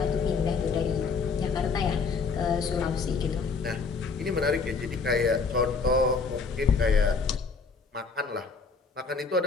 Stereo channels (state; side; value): quieter; right; 4.8 dB